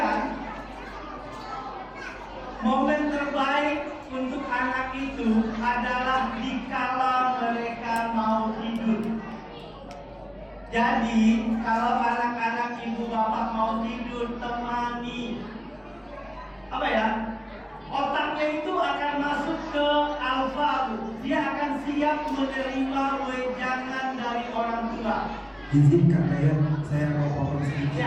momen terbaik untuk anak itu adalah dikala mereka mau tidur. Jadi kalau anak-anak ibu bapak mau tidur, temani. Otaknya itu akan masuk ke alfa. Dia akan siap menerima wejangan dari orang tua. Izinkan saya mau potong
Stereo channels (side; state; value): both; identical; correlation 1.00